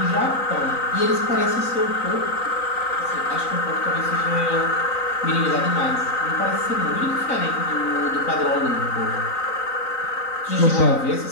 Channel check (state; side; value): late; right; 3.9 ms